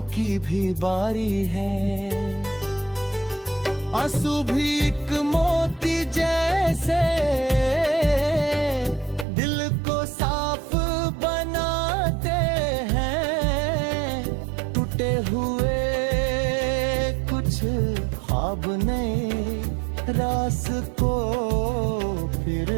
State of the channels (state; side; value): drops out; left; at 9.2 s